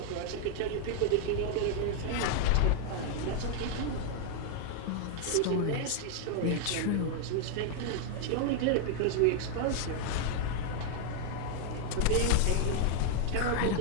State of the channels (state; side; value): different; both; correlation 0.00